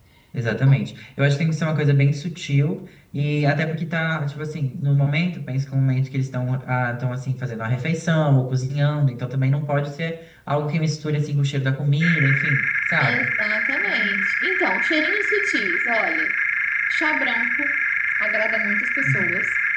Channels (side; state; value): both; identical; correlation 1.00